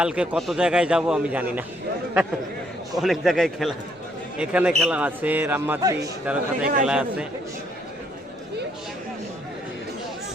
কত জায়গায় যাব আমি জানি না, অনেক জায়গায় খেলা, এখানে খেলা আছে, রামমাটি তেরোখাতায় খেলা আছে।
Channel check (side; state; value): both; normal; correlation 0.69